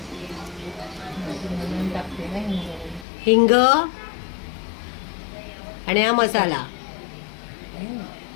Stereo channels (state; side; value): drops out; right; at 3.1 s